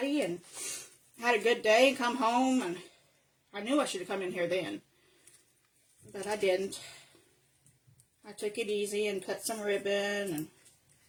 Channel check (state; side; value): identical; both; correlation 1.00